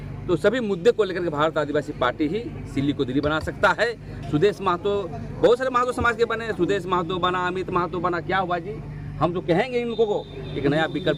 तो सभी मुद्दे को लेकर के भारत आदिवासी पार्टी ही सिल्ली को दिल्ली बना सकता है। सुदेश महतो, बहुत सारे महतो समाज के बने, सुदेश महतो बना, अमित महतो बना, क्या हुआ जी? हम तो कहेंगे इन लोगों को एक नया विकल्प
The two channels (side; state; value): both; identical; correlation 1.00